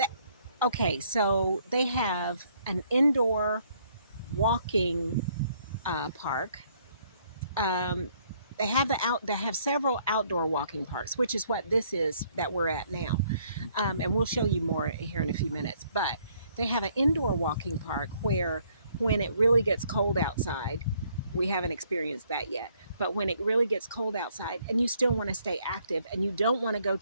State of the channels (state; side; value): inverted; both; correlation -0.66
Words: okay, so they have an indoor walking park. Um, they have several outdoor walking parks, which is what this is that we're at now. And we'll show you more here in a few minutes. But they have an indoor walking park where when it really gets cold outside, We haven't experienced that yet. But when it really gets cold outside and you still want to stay active and you don't want to go